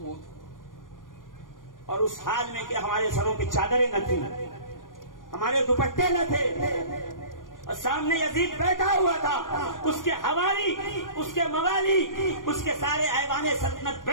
اور اس حال میں کہ ہمارے سروں پہ چادریں نہ تھیں، ہمارے دوپٹے نہ تھے، اور سامنے یزید بیٹھا ہوا تھا، اس کے حوالی، اس کے موالی، اس کے سارے ایوان سلطنت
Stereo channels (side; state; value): right; late; 0.90 ms